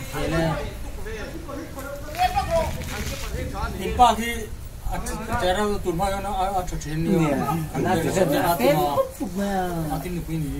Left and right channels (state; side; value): identical; both; correlation 1.00